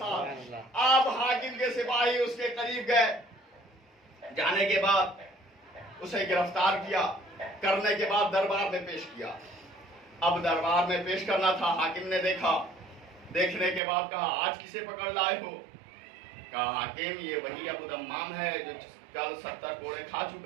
آپ حاکم کے سپاہی اس کے قریب گئے. جانے کے بعد اسے گرفتار کیا. کرنے کے بعد دربار میں پیش کیا. اب دربار میں پیش کرنا تھا. حاکم نے دیکھا. دیکھنے کے بعد کہا آج کسے پکڑ لائے ہو. کہا حاکم یہ وہی ابو دمام ہے جو کل 70 کوڑے کھا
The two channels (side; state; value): left; drops out; at 13.8 s